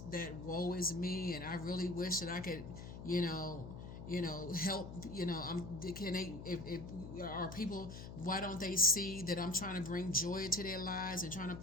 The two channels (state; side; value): noise; left; hum, 10 dB below the sound